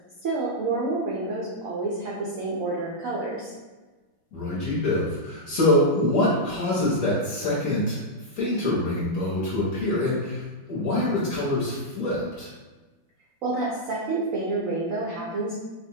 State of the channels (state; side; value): normal; both; correlation -0.06